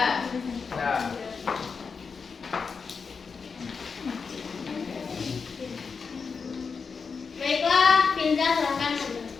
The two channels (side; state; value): right; quieter; 5.3 dB